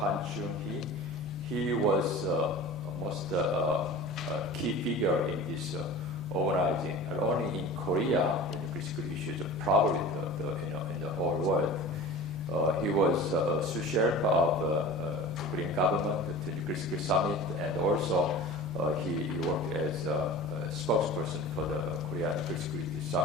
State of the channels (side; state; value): both; normal; correlation 0.38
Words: Chung-hee. He was almost a key figure in this organizing, not only in Korea, in nuclear security issues, but probably in the whole world. He was a sous chef of the Korean government at the Nuclear Security Summit, and also he worked as a spokesperson for the Korean Nuclear Security